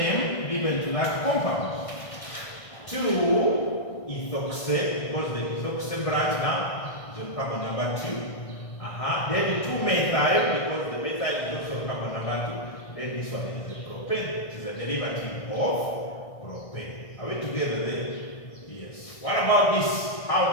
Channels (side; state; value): right; late; 1.6 ms